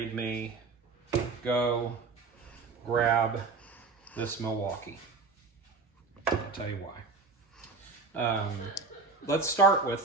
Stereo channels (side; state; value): left; quieter; 4.3 dB